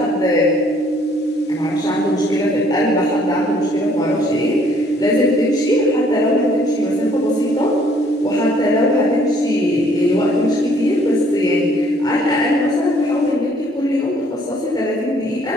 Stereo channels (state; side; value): normal; both; correlation 0.62